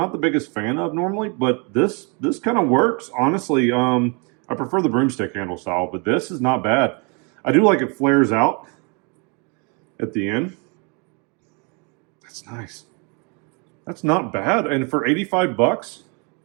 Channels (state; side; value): quieter; left; 33.4 dB